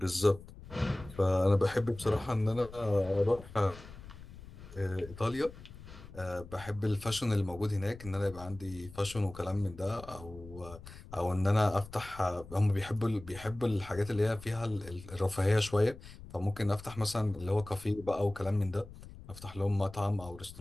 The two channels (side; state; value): left; noise; rumble, 16 dB below the sound